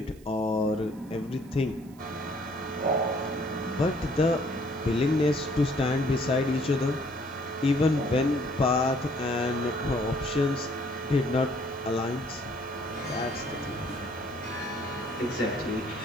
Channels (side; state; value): right; noise; hiss, 27 dB below the sound